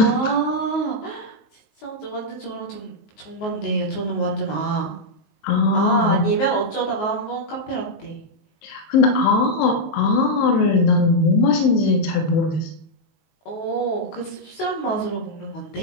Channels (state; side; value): late; right; 19 ms